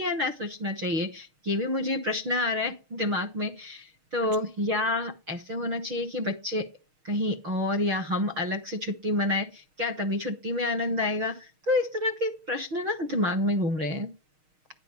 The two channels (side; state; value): left; late; 6.4 ms